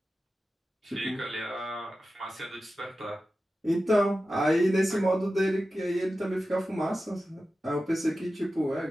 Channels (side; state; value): both; normal; correlation 0.93